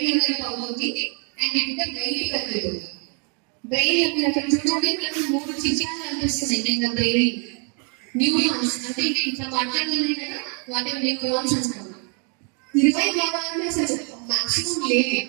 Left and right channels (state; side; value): quieter; left; 38.1 dB